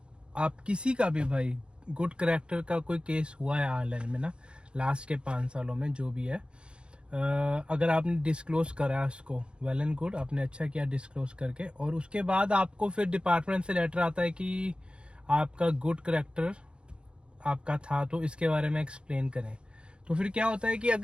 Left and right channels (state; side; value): late; left; 0.055 ms